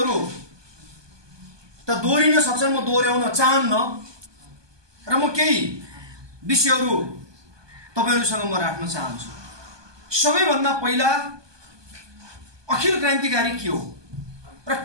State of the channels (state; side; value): late; left; 1.2 ms